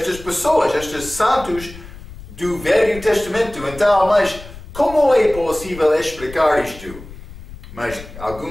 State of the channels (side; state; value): left; noise; rumble, 15 dB below the sound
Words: pessoas, estes santos do Velho Testamento. Então, mas como é possível explicar isto? Mas